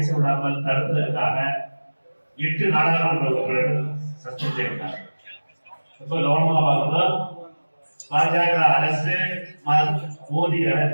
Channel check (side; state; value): both; inverted; correlation -1.00